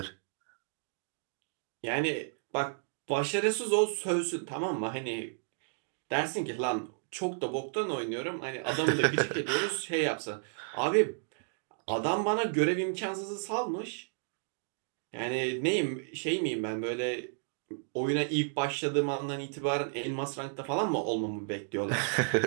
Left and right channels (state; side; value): silent; left; digital silence